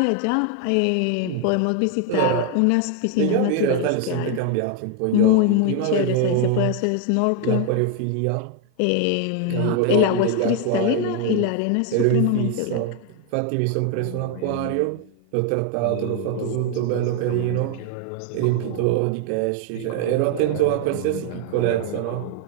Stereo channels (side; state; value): both; different; correlation 0.00